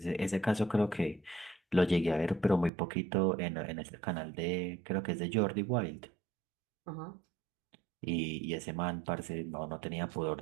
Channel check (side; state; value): left; drops out; at 2.7 s